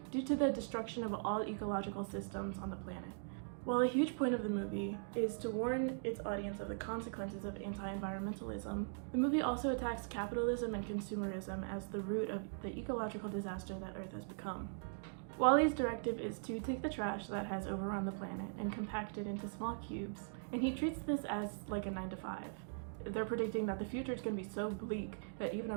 due to the destruction of all ecological systems on the planet. While a huge point of the movie is to warn its audience of the consequences of anti-environmentalism, the movie also attacks capitalism and consumerism as the root of the ecological disaster that Earth has become. WALL-E's directive is to take the trash that has overrun the planet and compact it into small cubes, and he treats this as like a 9-to-5. They're predicting that the future is going to be so bleak that even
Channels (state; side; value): silent; left; digital silence